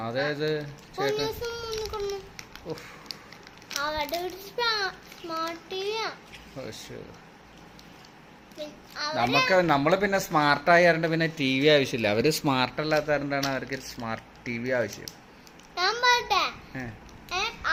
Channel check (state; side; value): identical; both; correlation 1.00